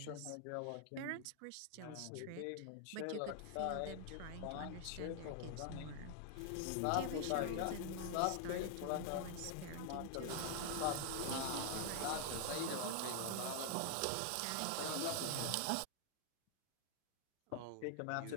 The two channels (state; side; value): different; both; correlation 0.00